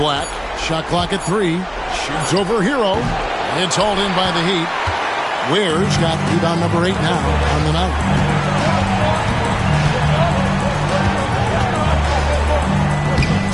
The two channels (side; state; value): both; identical; correlation 1.00